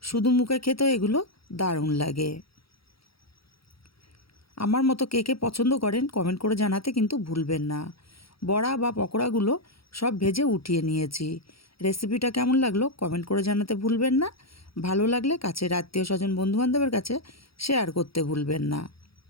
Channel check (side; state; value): right; late; 0.75 ms